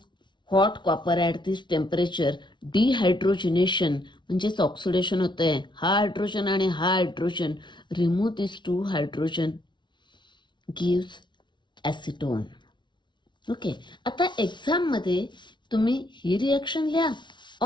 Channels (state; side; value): late; right; 0.23 ms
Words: hot copper at this temperature, dehydrogenation म्हणजेच ऑक्सिडेशन होतं आहे. हा हायड्रोजन आणि हा hydrogen remove this 2 hydrogen gives acetone. Okay, आता एक्झाममध्ये तुम्ही ही रिएक्शन लिहा